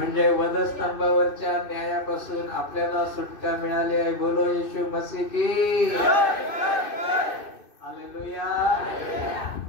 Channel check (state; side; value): late; right; 2.6 ms